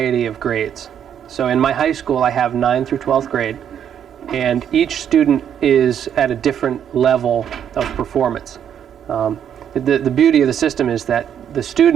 of grades. So in my high school I have 9th through 12th grade, and each student is at a different level of performance. The beauty of the system is that the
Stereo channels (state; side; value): quieter; left; 9.0 dB